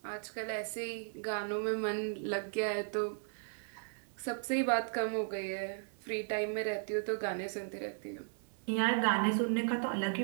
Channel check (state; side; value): silent; left; digital silence